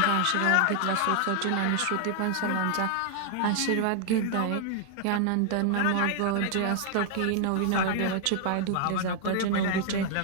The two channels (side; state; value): both; different; correlation 0.00